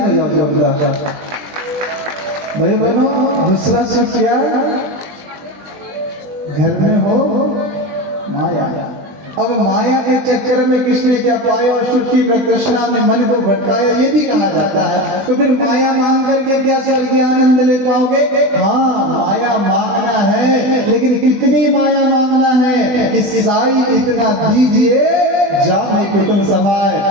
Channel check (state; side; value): late; left; 20 ms